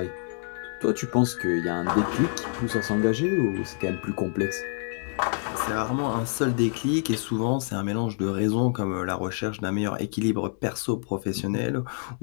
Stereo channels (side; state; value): right; silent; 60 dB below the other